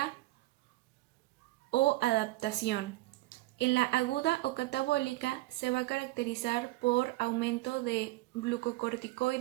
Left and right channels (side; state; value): left; quieter; 19.1 dB